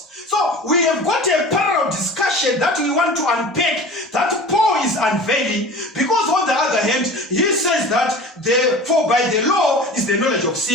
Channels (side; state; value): both; normal; correlation 0.38